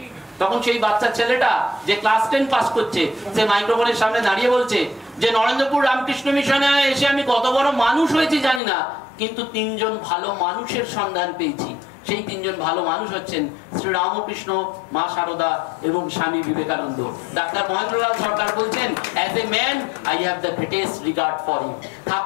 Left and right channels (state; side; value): drops out; right; at 8.6 s